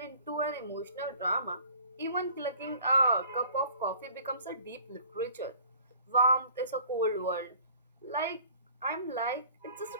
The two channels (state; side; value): inverted; both; correlation -0.51